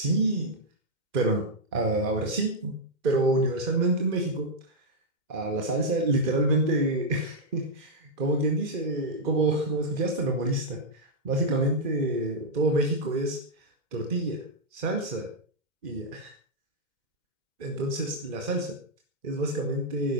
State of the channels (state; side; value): late; left; 2.1 ms